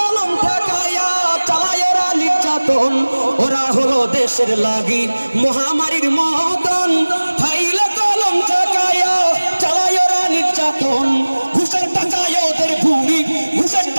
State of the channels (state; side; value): inverted; both; correlation -1.00